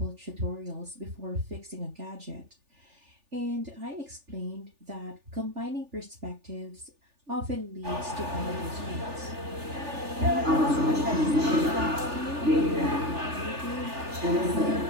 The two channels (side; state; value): left; late; 3.4 ms